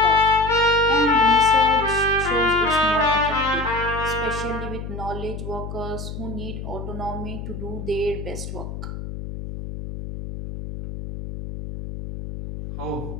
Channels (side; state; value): left; noise; hum, 8 dB below the sound